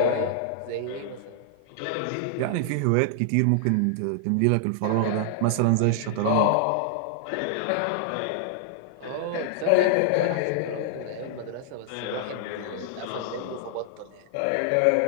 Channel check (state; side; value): different; both; correlation -0.01